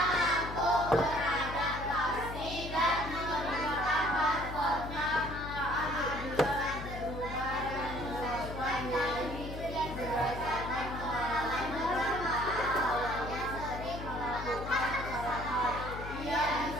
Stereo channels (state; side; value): noise; left; hum, 9 dB below the sound